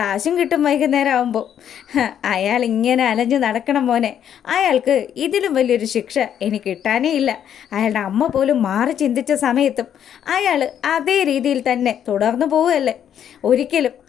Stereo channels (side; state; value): right; quieter; 9.5 dB